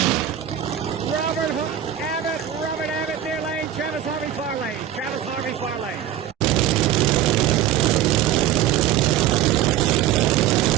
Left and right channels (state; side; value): quieter; left; 10.9 dB